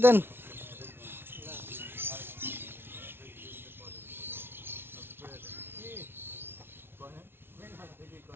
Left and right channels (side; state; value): left; late; 0.11 ms